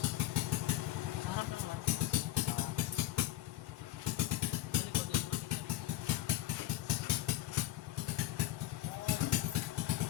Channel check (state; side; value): quieter; right; 14.9 dB